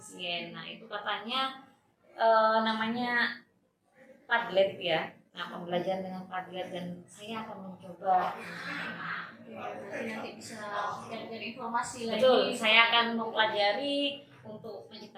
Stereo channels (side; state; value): both; identical; correlation 1.00